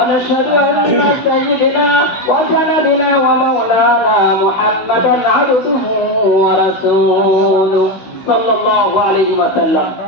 أن سيدنا وسندنا ومولانا محمدا عبده ورسوله صلى الله عليه وسلم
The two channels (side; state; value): right; late; 16 ms